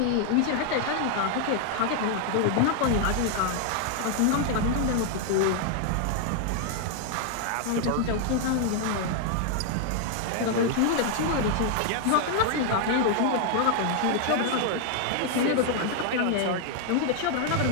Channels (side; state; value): both; different; correlation 0.00